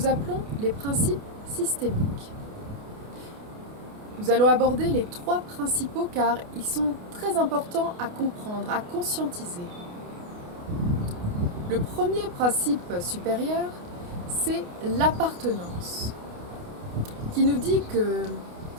appelons les principes systémiques. Nous allons aborder les 3 principaux car ils sont très importants à comprendre, à conscientiser. Le premier principe supérieur, c'est l'appartenance, qui nous dit que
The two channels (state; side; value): late; left; 28 ms